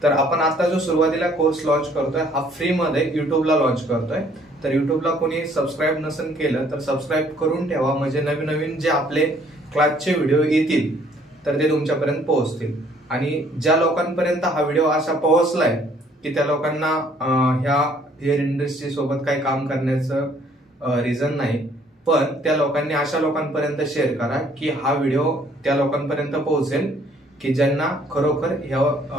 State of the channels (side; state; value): both; normal; correlation 0.61